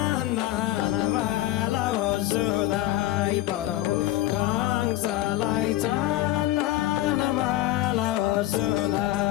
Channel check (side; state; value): right; quieter; 14.9 dB